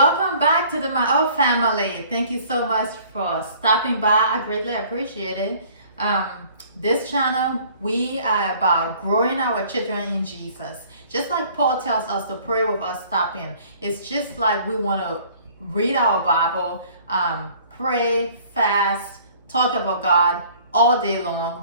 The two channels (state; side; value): inverted; both; correlation -0.53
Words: back to the My Old Family. Thank you so much for stopping by. I greatly appreciate it. Um, this channel, we are about growing our children in Jesus. Just like Paul tells us to pray with us stopping. It's just like we want to read our Bible, pray, fast, talk about God all day